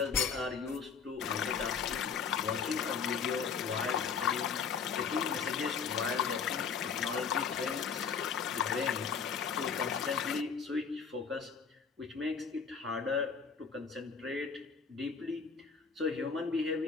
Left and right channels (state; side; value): quieter; right; 6.1 dB